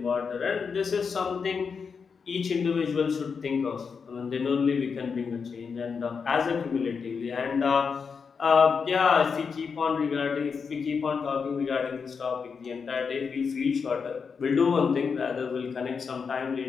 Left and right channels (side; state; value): right; quieter; 5.7 dB